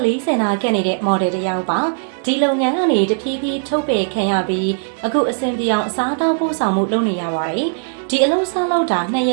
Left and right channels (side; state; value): left; silent; 67 dB below the other